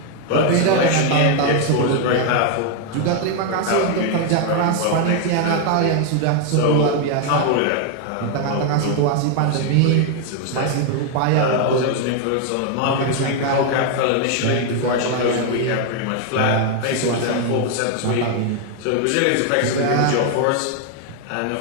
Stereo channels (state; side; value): different; both; correlation 0.01